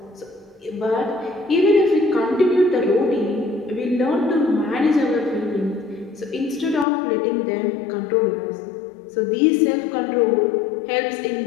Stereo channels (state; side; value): drops out; right; at 6.9 s